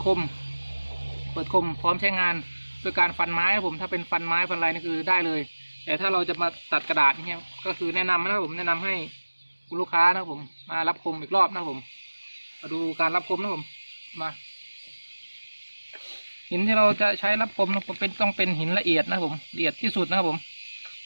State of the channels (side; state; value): both; inverted; correlation -1.00